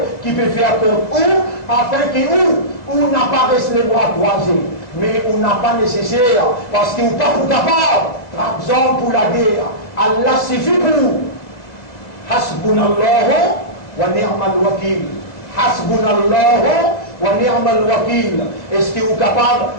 qui peut faire contre où, afin qu'on n'a pas resté les bras croisés. Mais on n'a pas nécessaire, parce qu'on n'est pas capable, par exemple pour la guerre. Allah suffit pour nous. Hasbunallahu wa ni'mal wakil. Hasbunallahu wa ni'mal wakil. Est-ce que vous êtes capable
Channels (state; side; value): late; right; 2.0 ms